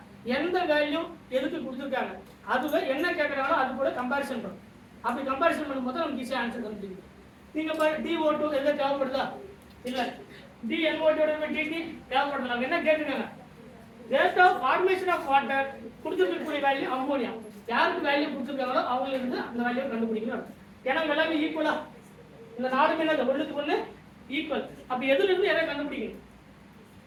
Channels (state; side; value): identical; both; correlation 1.00